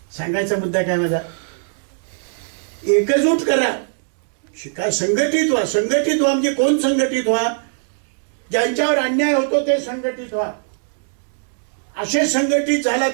सांगायचा मुद्दा काय माझा? एकजूट करा, शिका, संघटित व्हा. संघटित व्हा म्हणजे कोण संघटित व्हा? ज्यांच्यावर अन्याय होतो ते संघटित व्हा. असे संघटित झाला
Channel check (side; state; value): left; silent; digital silence